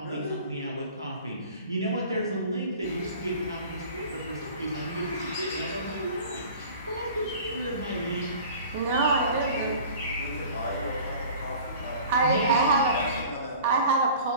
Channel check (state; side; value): inverted; both; correlation -0.44